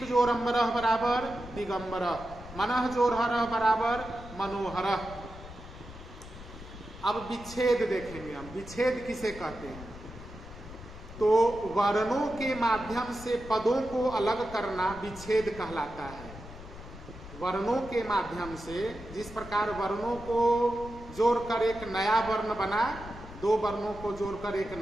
जोड़ अम्बरह बराबर दिगंबरह, मनः जोड़ हरह बराबर मनोहरः। अब विच्छेद देखेंगे हम, विच्छेद किसे कहते हैं। तो वर्णों के माध्यम से पदों को अलग करना विच्छेद कहलाता है। वर्णों के माध्यम से, जिस प्रकार वर्णों को जोड़कर एक नया वर्ण बना, दो वर्णों को जोड़कर एक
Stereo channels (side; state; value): left; noise; rumble, 14 dB below the sound